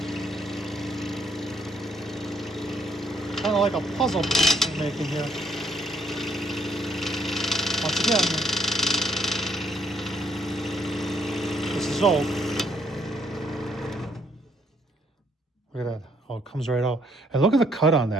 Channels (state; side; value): normal; both; correlation 0.69